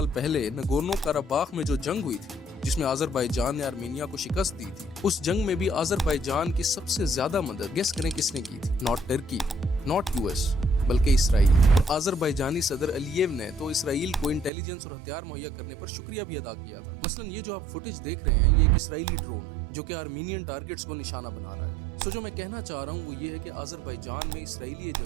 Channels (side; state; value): left; drops out; at 14.5 s